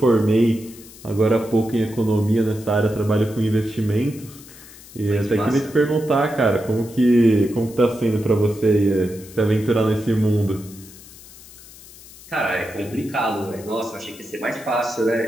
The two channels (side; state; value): left; noise; hiss, 20 dB below the sound